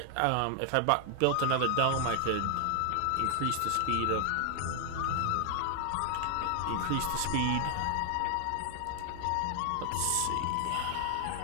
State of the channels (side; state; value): both; different; correlation 0.00